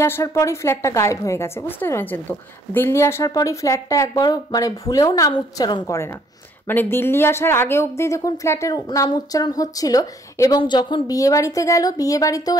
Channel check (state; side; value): normal; both; correlation 0.65